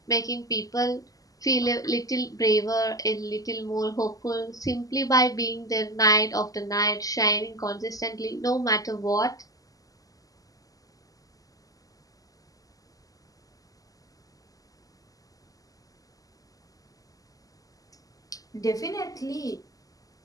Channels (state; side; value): late; right; 0.17 ms